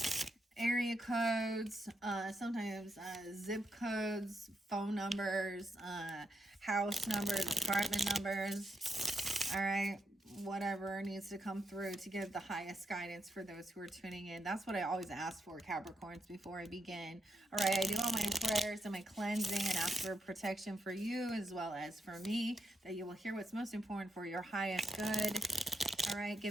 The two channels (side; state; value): both; normal; correlation 0.83